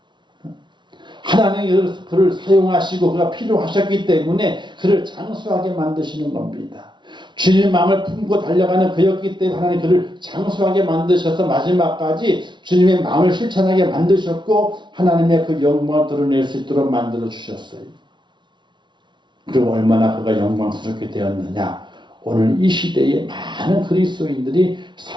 하나님이 그를 사용하시고 그가 필요하셨기 때문에 그를 장수하게 만드시는 겁니다. 주님의 마음을 품고 달려가는 그였기 때문에 하나님 그를 장수하게 만드셔서 마지막까지 주님의 마음을 실천하게 만드셨고 하나님의 그 영광을 드러낼 수 있도록 만들어 주셨어요. 그리고 얼마나 그가 영광스럽게 되었느냐. 오늘 이 시대에 많은 그리스도인들이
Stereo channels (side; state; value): left; late; 0.23 ms